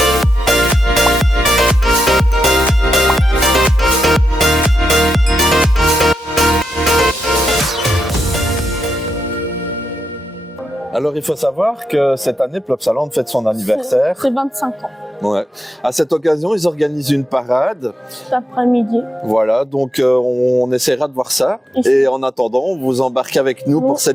Alors, il faut savoir que cette année, Plopsaland fête son anniversaire. C'est 25 ans. Ouais. À cette occasion, ils organisent une parade. Cet après-midi. Voilà, donc on essaiera de voir ça. Et en attendant, on vous embarque avec nous pour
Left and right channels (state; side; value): normal; both; correlation 0.84